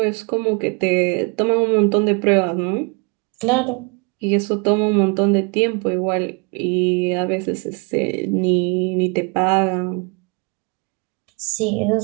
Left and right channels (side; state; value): left; quieter; 32.4 dB